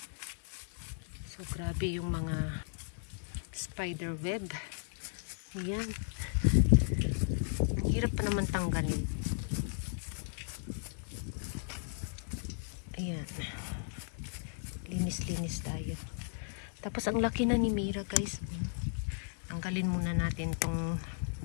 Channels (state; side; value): silent; right; digital silence